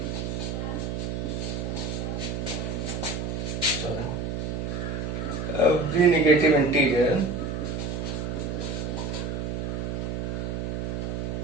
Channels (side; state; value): right; noise; hum, 2 dB below the sound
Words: sorry, every negative integer